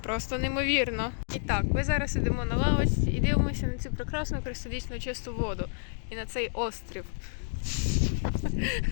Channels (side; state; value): right; silent; digital silence